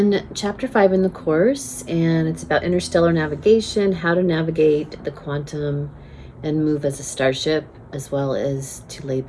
chapter 5 in the course, and it's about interstellar navigation, how to navigate the quantum and move as a starship, as well as to lay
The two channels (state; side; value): identical; both; correlation 1.00